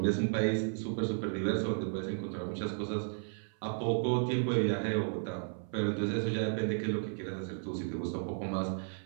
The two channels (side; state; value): left; silent; 55 dB below the other